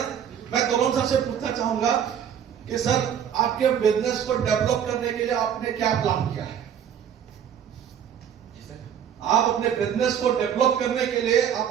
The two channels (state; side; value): quieter; left; 8.8 dB